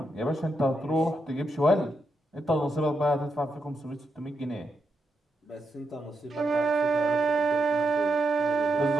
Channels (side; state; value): both; normal; correlation 0.84